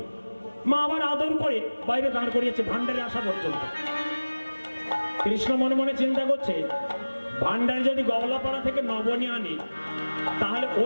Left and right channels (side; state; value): both; inverted; correlation -1.00